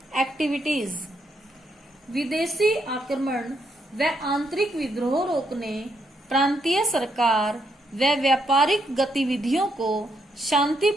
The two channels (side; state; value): both; normal; correlation 0.77